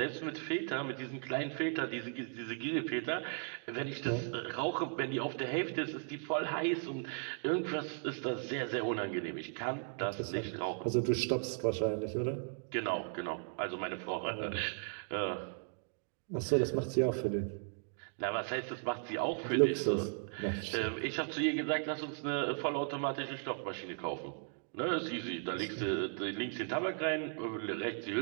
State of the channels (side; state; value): left; silent; 53 dB below the other